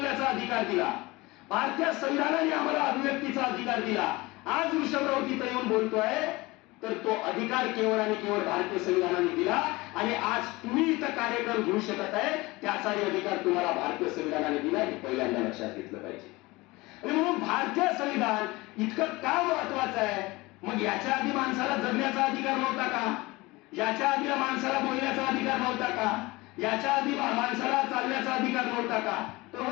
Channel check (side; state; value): right; quieter; 21.9 dB